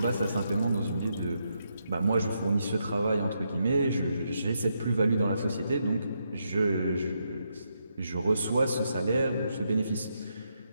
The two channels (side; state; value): both; inverted; correlation -0.81